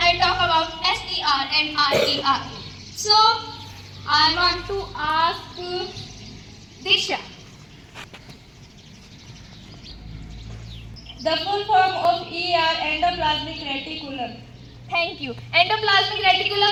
talk about SER and RER. So, I want to ask Disha. The full form of ER, endoplasmic reticulum. Thank you. Endoplasmic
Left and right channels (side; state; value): both; identical; correlation 1.00